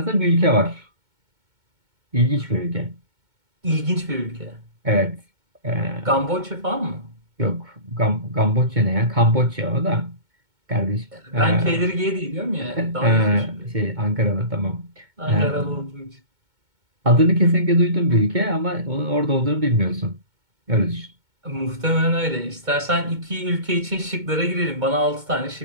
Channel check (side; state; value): left; late; 2.2 ms